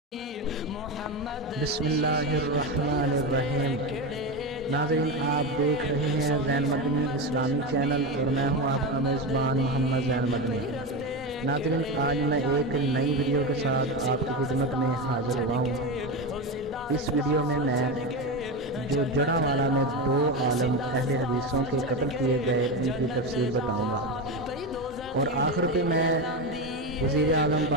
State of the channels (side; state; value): both; normal; correlation 0.17